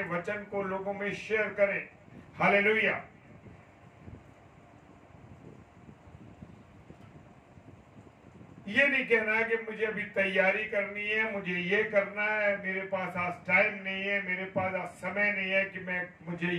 वचन को लोगों में शेयर करें। हालेलुया। ये नहीं कहना है कि मुझे अभी तैयारी करनी है, मुझे ये करना है, मेरे पास आज टाइम नहीं है, मेरे पास आज समय नहीं है कि मुझे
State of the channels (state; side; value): identical; both; correlation 1.00